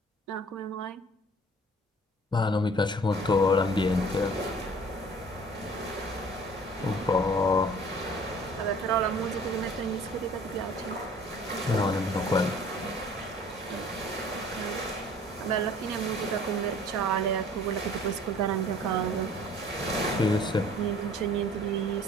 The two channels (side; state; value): both; normal; correlation 0.51